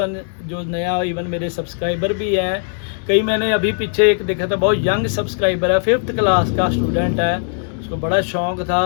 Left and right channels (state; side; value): silent; right; 67 dB below the other